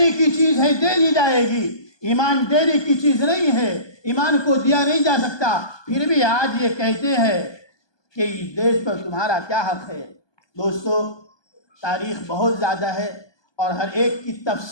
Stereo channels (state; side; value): late; right; 1.2 ms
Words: کی چیز ہے دے دی جائے گی، ایمان دینے کی چیز نہیں ہے، ایمان کو دیا نہیں جا سکتا۔ پھر بھی آج یہ کہتے ہیں کہ اس دیش پر تمہارا کیا حق ہے۔ دوستو، تاریخ بہت زیادہ ہے اور ہر ایک کی